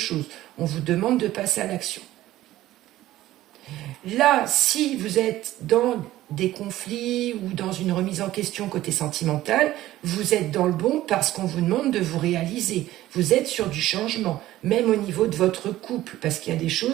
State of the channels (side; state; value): left; quieter; 15.0 dB